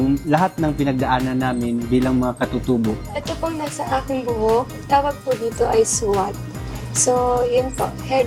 lahat ng pinagdaanan namin bilang mga katutubo. Ito pong nasa aking buhok, tawag po dito ay suwat. So, yun po,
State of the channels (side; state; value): both; identical; correlation 1.00